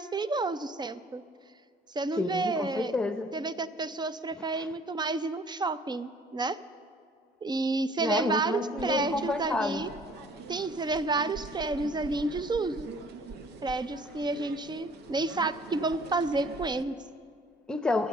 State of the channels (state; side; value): normal; both; correlation 0.55